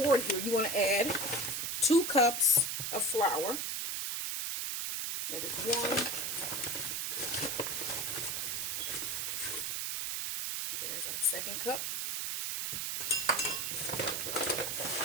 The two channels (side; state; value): right; noise; hiss, 1 dB below the sound